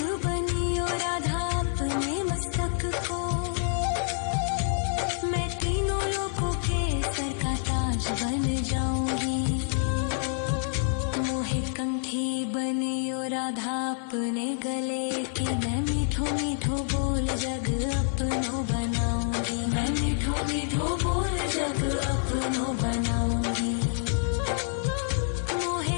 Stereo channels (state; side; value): silent; right; 60 dB below the other